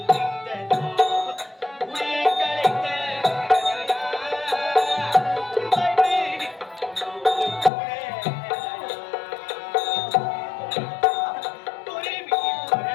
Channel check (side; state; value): right; drops out; at 7.7 s